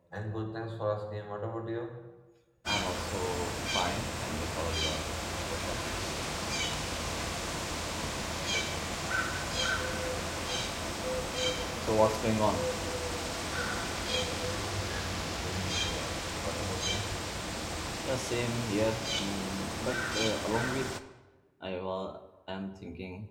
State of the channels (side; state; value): both; identical; correlation 1.00